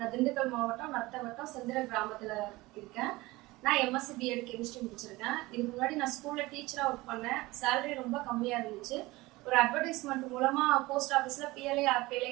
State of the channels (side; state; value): left; quieter; 20.6 dB